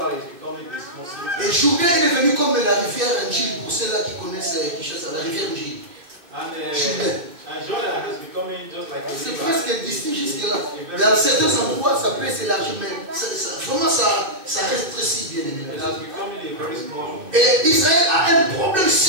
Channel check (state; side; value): late; left; 2.6 ms